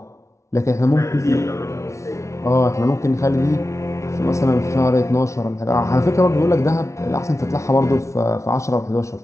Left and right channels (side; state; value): right; late; 0.14 ms